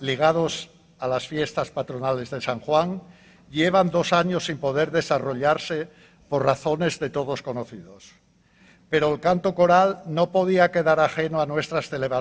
a las fiestas patronales de San Juan, llevan 2 años sin poder desarrollarse por razones de todos conocidos. Pero el canto coral no podía quedar ajeno a nuestras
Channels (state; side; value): identical; both; correlation 1.00